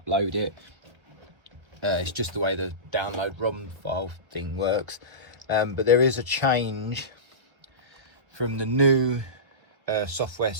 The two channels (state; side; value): late; left; 1.4 ms